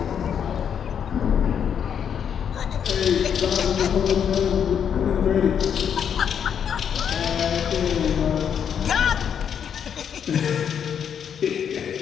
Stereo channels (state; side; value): quieter; right; 8.1 dB